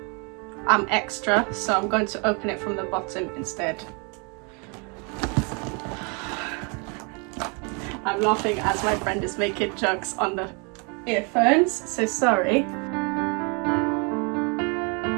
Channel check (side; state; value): left; quieter; 33.5 dB